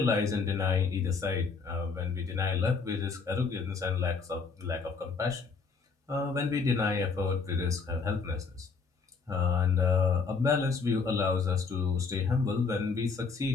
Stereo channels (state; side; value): quieter; right; 4.9 dB